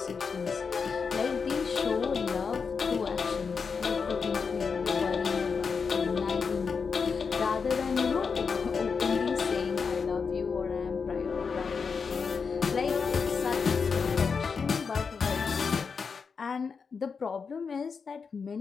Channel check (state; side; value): quieter; right; 5.5 dB